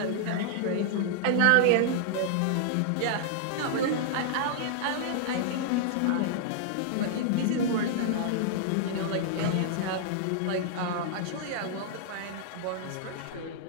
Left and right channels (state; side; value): different; both; correlation -0.01